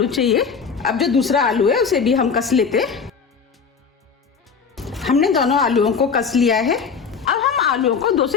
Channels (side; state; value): right; quieter; 5.8 dB